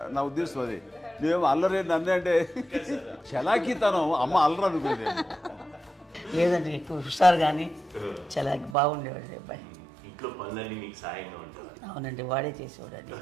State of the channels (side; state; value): left; drops out; at 8.8 s